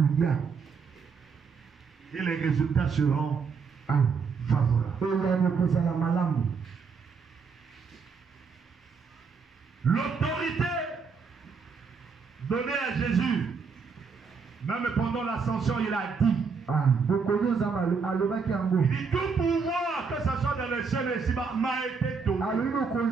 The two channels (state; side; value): quieter; left; 5.4 dB